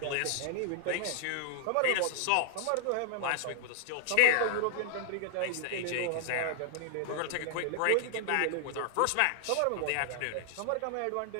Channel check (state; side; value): different; both; correlation -0.01